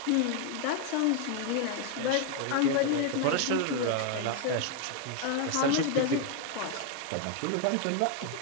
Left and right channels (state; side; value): different; both; correlation 0.01